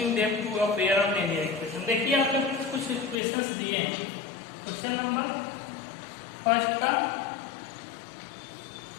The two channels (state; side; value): drops out; right; at 3.2 s